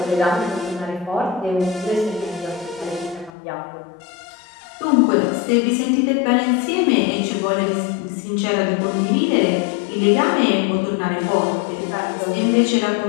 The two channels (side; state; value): right; drops out; at 3.3 s